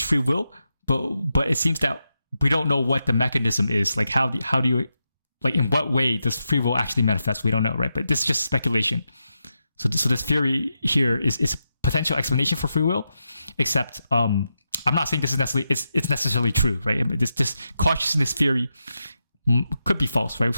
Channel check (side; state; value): both; inverted; correlation -0.87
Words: free will. But it seems that we don't know what the mechanism is. Like how do you, like, in what way does free will actually manifest? We don't know, right? But this is just speculation. So this theory here is a potential explanation for free will, except I'm not saying this is necessarily it's necessarily true, right? I mean, this consciousness theory could be false, right?